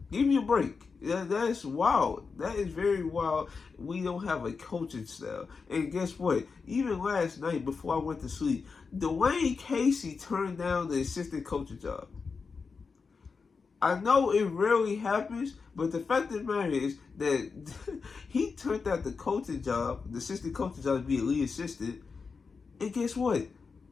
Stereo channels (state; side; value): quieter; right; 5.0 dB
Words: Give me a break. That's wild. That is very wild. We don't have a coaching style. And guess what? Even last night before I went to sleep, Dwayne Casey turned down the assistant coaching job. I know it rarely happens, but the fact of the matter is that he turned out the coaching job, the assistant coaching job, to be a lead assistant. And guess what?